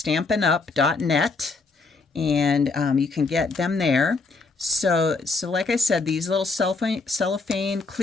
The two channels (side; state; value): right; quieter; 4.0 dB